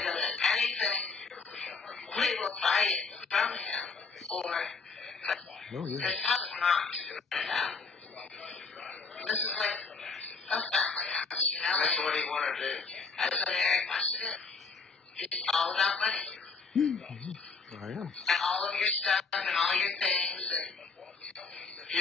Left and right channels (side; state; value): right; quieter; 4.6 dB